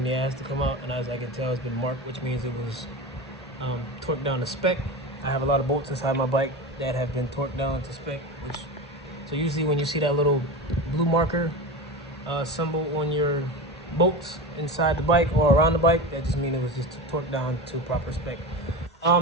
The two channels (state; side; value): normal; both; correlation 0.26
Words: the ass to come out, and as I can tell, it's been marked, which means it was torqued down to spec. I have a lot of bolts inside my bike that have been torqued down to spec, so usually when you see that little blue marker symbol on your bolts inside the bike or around the bike, that just means it was just torqued down to proper spec.